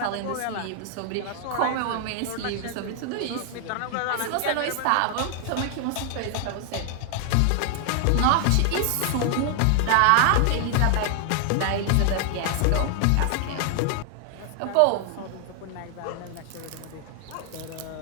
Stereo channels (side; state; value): both; different; correlation 0.00